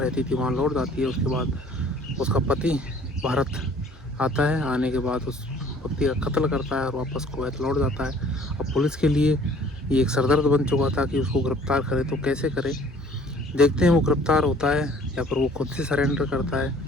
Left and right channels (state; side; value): normal; both; correlation 0.54